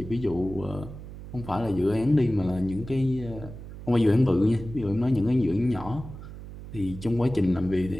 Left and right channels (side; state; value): right; noise; hum, 13 dB below the sound